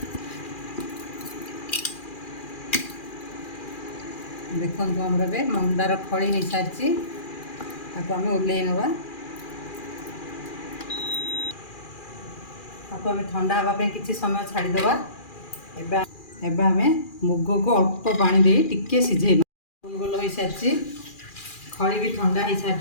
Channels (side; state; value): right; late; 2.4 ms